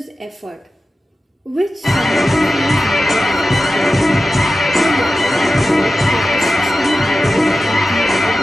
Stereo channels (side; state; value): both; normal; correlation 0.94